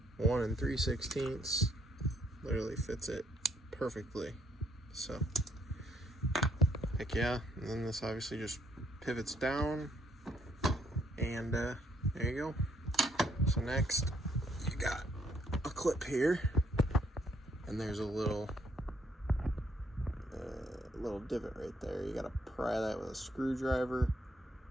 1 3/16. Literally fits it perfectly. So, heck yeah. And then this obviously just pivots down, and there you go. So next, you got a clip here, and there's a little divot right there. You gotta pry that with a screwdriver,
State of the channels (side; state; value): both; normal; correlation 0.70